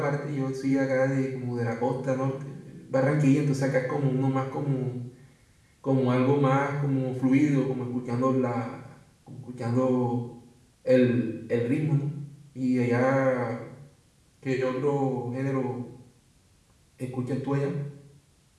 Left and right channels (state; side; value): identical; both; correlation 1.00